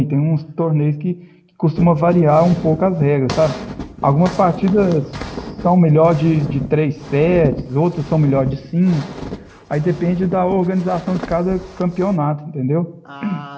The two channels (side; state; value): both; identical; correlation 1.00